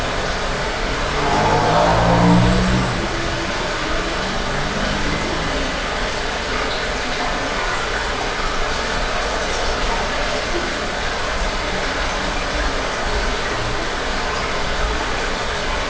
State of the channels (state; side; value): identical; both; correlation 1.00